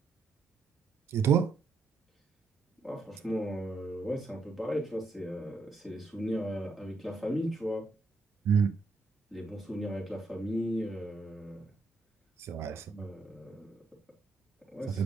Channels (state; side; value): quieter; left; 3.7 dB